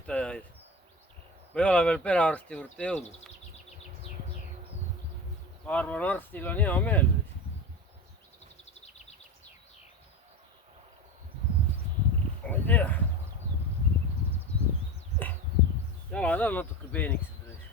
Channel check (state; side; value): normal; both; correlation 0.26